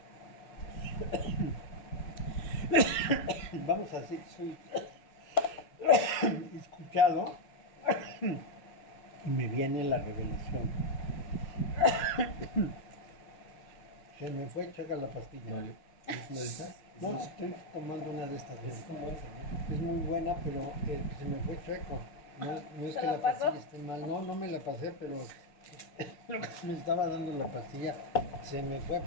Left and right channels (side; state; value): right; late; 5.4 ms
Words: Vamos a decir, soy escuchado y me viene la revelación. Se me fue, checa la pastilla. Mario, ¿es una de estas? No, estoy tomando una de estas. Es como esa, ¿no? Es muy buena, pero se me fue chueco. No es ¿Se que la la pasó? pastilla esté mal. No me la pasé, pero lo que me estaba dando la pastilla se me fue